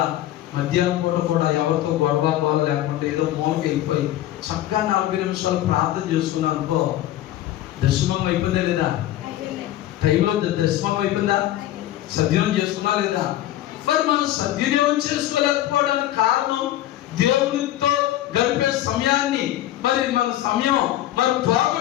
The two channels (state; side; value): quieter; right; 13.6 dB